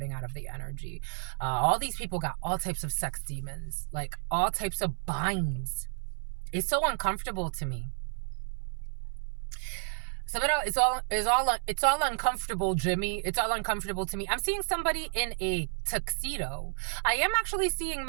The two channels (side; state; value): left; silent; 57 dB below the other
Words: out of the energy. All these people got all types of sex demons. Like all types of binds. It's so uncomfortable to me. It's all uncomfortable, Jimmy. It's all uncomfortable to me. I'm seeing somebody in a tuxedo. I am actually seeing